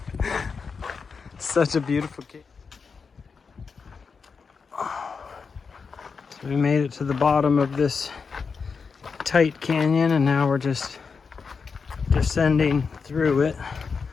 Such a beautiful cave. So we made it to the bottom of this tight canyon, and now we're just descending through it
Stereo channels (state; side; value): quieter; right; 5.3 dB